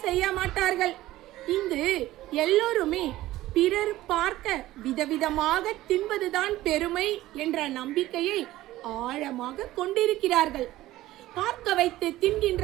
செய்ய மாட்டார்கள். இங்கு எல்லோருமே பிறர் பார்க்க விதவிதமாக தின்பதுதான் பெருமை என்ற நம்பிக்கையை ஆழமாக கொண்டிருக்கிறார்கள். பார்க்க வைத்து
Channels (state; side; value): quieter; left; 16.0 dB